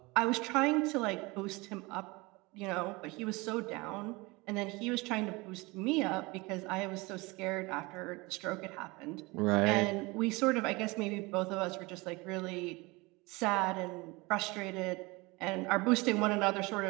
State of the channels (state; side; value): quieter; left; 24.3 dB